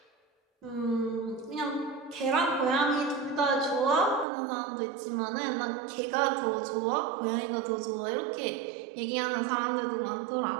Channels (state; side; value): drops out; left; at 4.2 s